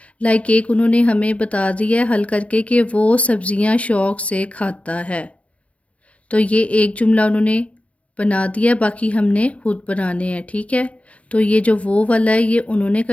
लाइक एक उन्होंने हमें बता दिया है हल करके कि वो सब्जियां शौक से खाता है, तो ये एक जुमला उन्होंने बना दिया, बाकी हमने खुद बनाने हैं, ठीक है। तो ये जो वो वाला है ये उन्होंने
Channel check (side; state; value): right; late; 0.064 ms